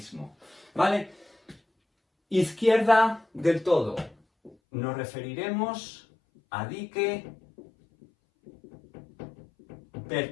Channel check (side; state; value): right; drops out; at 4.5 s